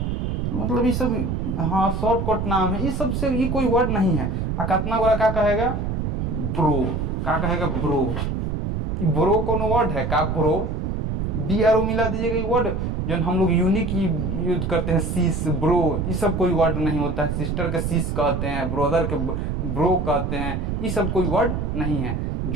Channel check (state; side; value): noise; right; rumble, 1 dB below the sound